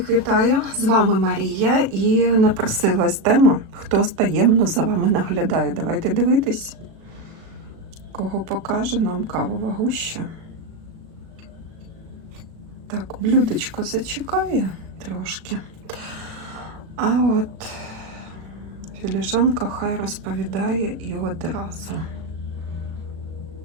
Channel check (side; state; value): left; late; 36 ms